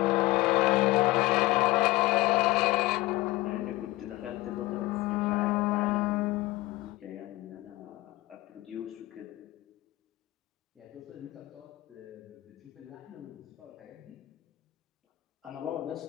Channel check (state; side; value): quieter; right; 19.0 dB